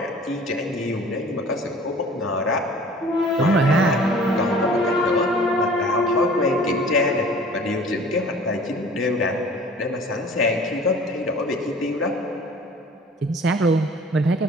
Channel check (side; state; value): both; normal; correlation 0.47